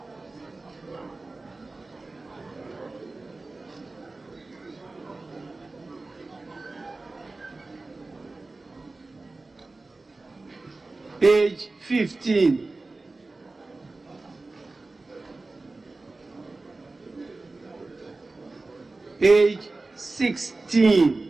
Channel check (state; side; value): quieter; left; 3.3 dB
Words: page 15. Page